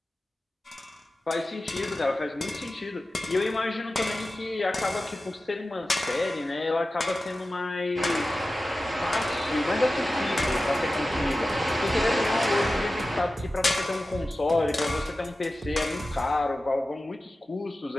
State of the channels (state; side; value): normal; both; correlation 0.95